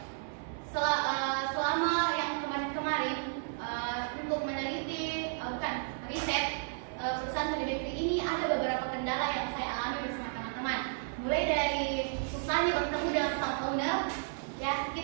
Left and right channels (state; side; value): silent; left; digital silence